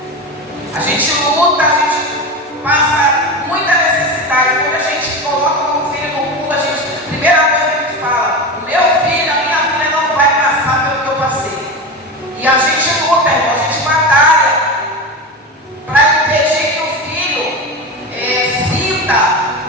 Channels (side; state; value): both; normal; correlation 0.23